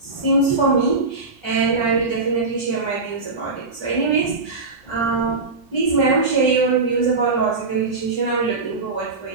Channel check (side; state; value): left; quieter; 3.8 dB